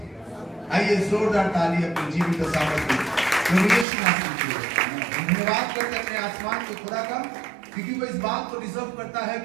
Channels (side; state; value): left; drops out; at 3.9 s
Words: आइए जोरदार ताली अपने जीवित सामर्थ्य प्रभु यीशु मसीह के लिए धन्यवाद करते हैं अपने आसमान के खुदा का, क्योंकि वो इस बात को डिजर्व करता है